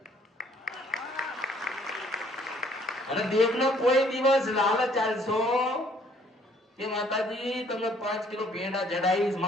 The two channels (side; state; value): both; normal; correlation 0.62